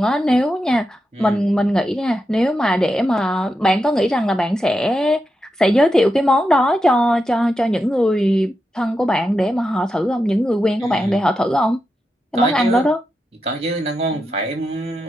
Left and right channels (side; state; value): both; normal; correlation 0.87